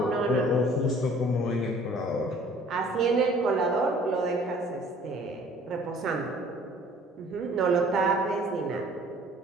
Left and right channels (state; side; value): normal; both; correlation 0.53